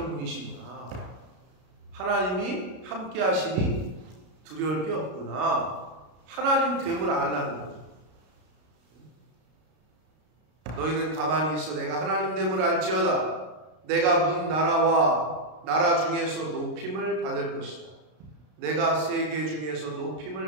분이시구나. 하나님이 함께 하시니 두려울 게 없구나. 하나님 됨을 알라는 거죠. 너희는 가만히 있어. 내가 하나님 됨을 알지어다. 내가 문 나라와 나라 중에서 높임을 받을 것이다. 내가 세계 중에서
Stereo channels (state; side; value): late; left; 33 ms